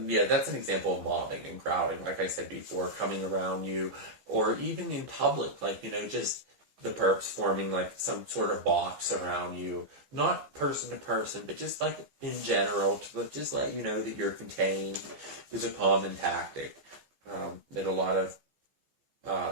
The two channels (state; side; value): late; left; 15 ms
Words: that's an example of mobbing and crowding, like I said before, coming around you, or even in public, like, just the perps forming like some sort of box around you, not person to person, but just like in general, to just let you know that you're contained, is a common tactic that a lot